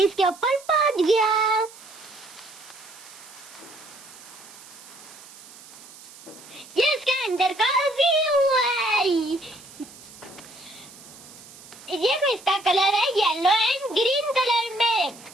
इसके ऊपर पहुंच गया। ये इसके अंदर का व्यू है। ये इसका कलर है येलो एंड ग्रीन कलर में।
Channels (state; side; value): noise; right; hiss, 19 dB below the sound